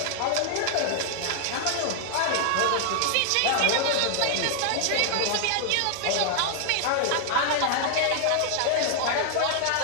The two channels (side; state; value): both; different; correlation 0.00